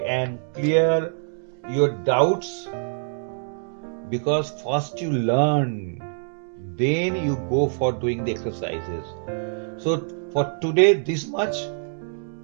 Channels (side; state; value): left; silent; digital silence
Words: and clear your doubts, because first you learn, then you go for doing the exercises. So for today, this much.